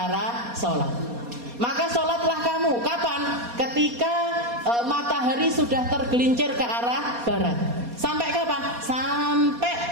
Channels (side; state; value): left; late; 4.2 ms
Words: sholat. Maka sholatlah kamu. Kapan? Ketika matahari sudah tergelincir ke arah barat. Sampai kapan?